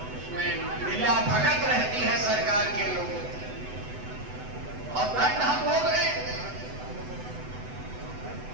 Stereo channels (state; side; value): late; left; 8.0 ms